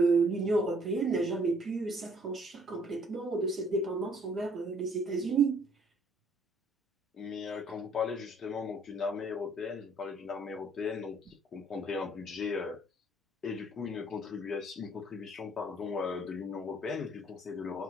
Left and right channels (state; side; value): normal; both; correlation 0.61